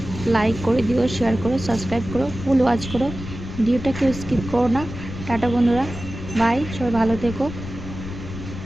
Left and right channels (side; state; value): left; noise; rumble, 10 dB below the sound